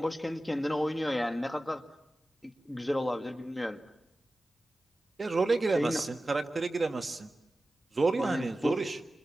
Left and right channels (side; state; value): both; normal; correlation 0.95